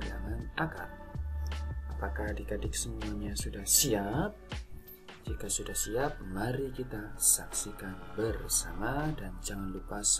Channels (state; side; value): identical; both; correlation 1.00